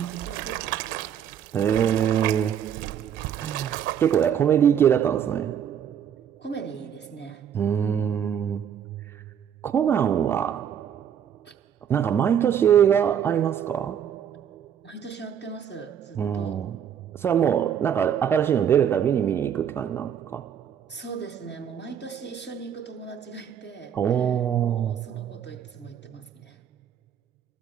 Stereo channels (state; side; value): quieter; left; 8.8 dB